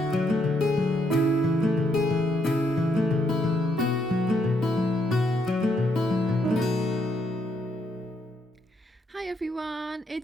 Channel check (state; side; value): normal; both; correlation 0.75